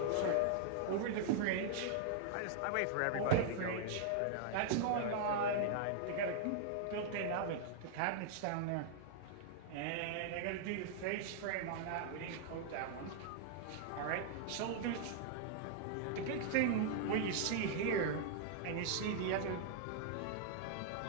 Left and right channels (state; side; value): different; both; correlation -0.01